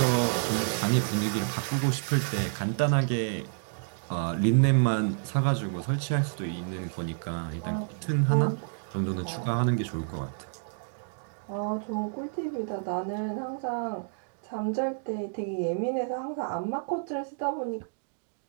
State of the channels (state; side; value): silent; left; digital silence